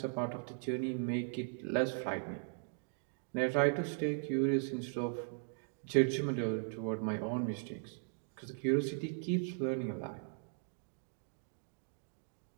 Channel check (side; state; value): left; silent; digital silence